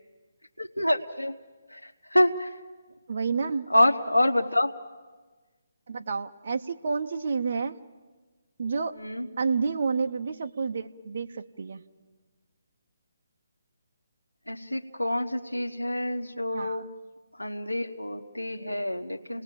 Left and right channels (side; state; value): both; inverted; correlation -0.92